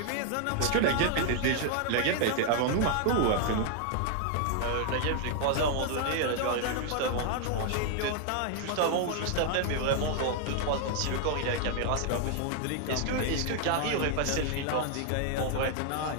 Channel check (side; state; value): both; different; correlation 0.00